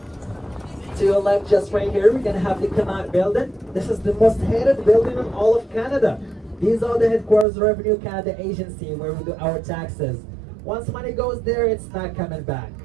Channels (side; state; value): left; drops out; at 7.5 s